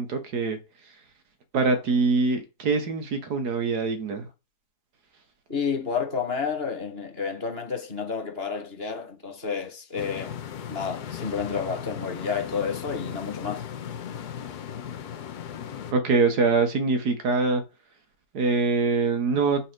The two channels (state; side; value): late; left; 2.9 ms